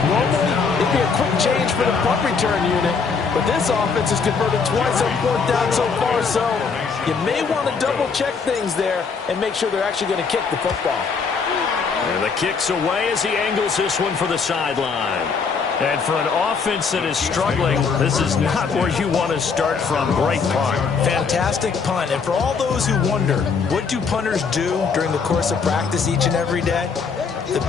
Normally, it'd be a quick change for the punt return unit, but this offense has converted twice on 4th down so far, so You may want to double-check things there and make sure they're actually going to kick the football. And the kick's away as he angles this one for the sideline. And for an offense that is struggling, this is not where you want to start from. Great punt. Fantastic punt. And for all those who wonder, what do punters do during the course of practice each and every day? The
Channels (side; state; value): right; quieter; 5.4 dB